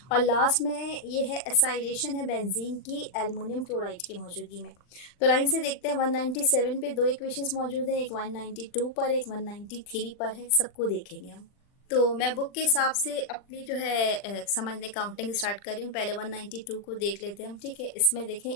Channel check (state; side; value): late; right; 40 ms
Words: और लास्ट में ये है एसाइलेशन है बेंजीन की एल्युमिनियम क्लोराइड की मौजूदगी में। तो लाइन से देखते हैं, 197 पे 2 इक्वेशंस मौजूद हैं, एक 192 पर एक 193 पर है, सबको देखेंगे हम। तो मैं बुक के हिसाब से अपनी जो है समझने काउंटिंग स्टार्ट कर रही हूँ। पहले 192 को देख लेते हैं हम, ठीक है। इसमें देखें